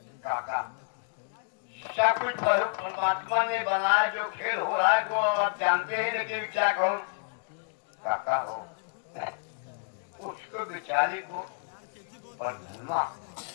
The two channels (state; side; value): silent; right; digital silence